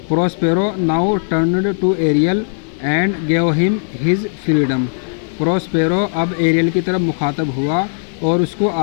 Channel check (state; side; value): silent; right; digital silence